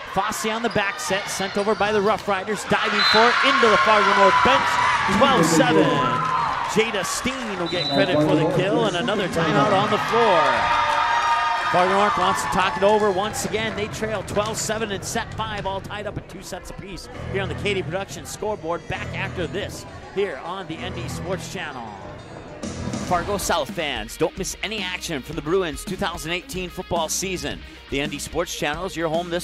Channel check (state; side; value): identical; both; correlation 1.00